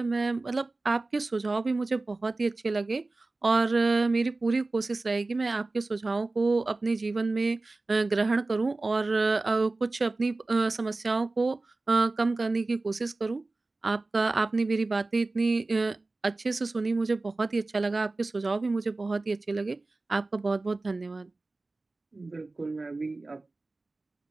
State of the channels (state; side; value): quieter; left; 3.3 dB